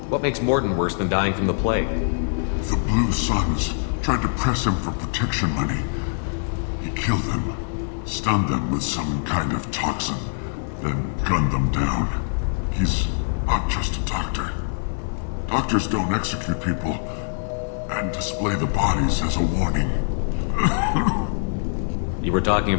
What makes Morton worse than dying from the plague? The Blue Suns tried to press him for protection money. He killed them, stunned them with some kind of toxin, then gunned them down. He's not just a doctor. Doctors don't execute people and display the bodies as a warning. You were talking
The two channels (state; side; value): silent; right; 63 dB below the other